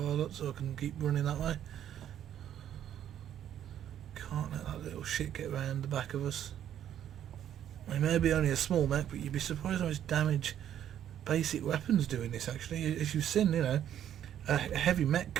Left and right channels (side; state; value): left; quieter; 10.5 dB